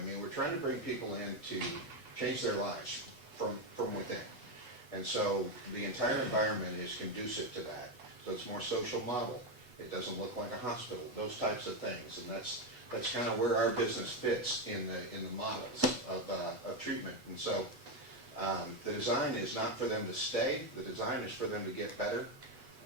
mean, we're trying to bring people in to change their lives from within. And so the entire environment is conducive to that. So it's more social model. It doesn't look like a hospital, those types of things. And that's kind of where our business fits in the models of treatment. And so the design is not for them to stay. The design is for them to get better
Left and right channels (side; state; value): left; late; 8.1 ms